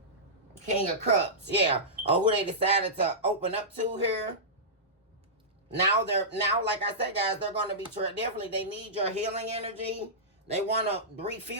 King of Cups, yeah. Or who they decided to open up to here. Now, like I said, guys, they're going to be definitely, they need your healing energy. They want to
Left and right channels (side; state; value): both; normal; correlation -0.17